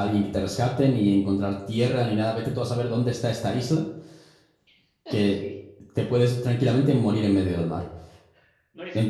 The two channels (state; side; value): identical; both; correlation 1.00